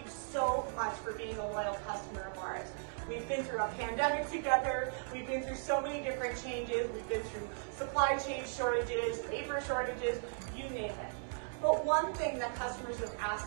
so much for being a loyal customer of ours. We've been through a pandemic together, we've been through so many different changes, we've been through supply chain shortages, labor shortages, you name it. But one thing that customers have asked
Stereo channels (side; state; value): left; silent; 53 dB below the other